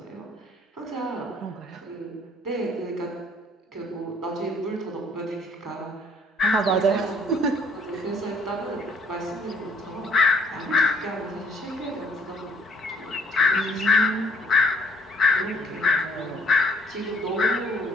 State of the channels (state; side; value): normal; both; correlation 0.61